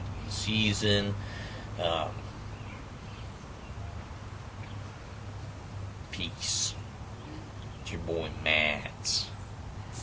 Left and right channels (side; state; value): both; identical; correlation 1.00